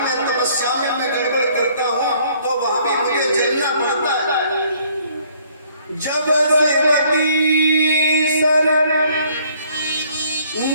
तपस्या में मैं गड़बड़ करता हूँ तो वहां भी मुझे जलना पड़ता है। जब श्रीमती शरण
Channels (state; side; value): inverted; both; correlation -0.61